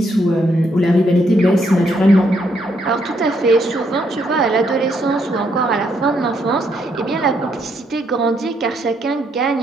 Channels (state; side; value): normal; both; correlation 0.74